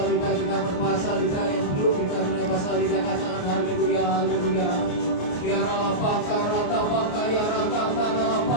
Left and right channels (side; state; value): right; late; 28 ms